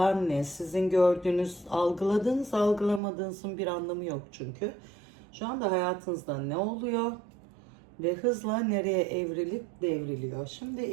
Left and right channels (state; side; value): drops out; left; at 3.0 s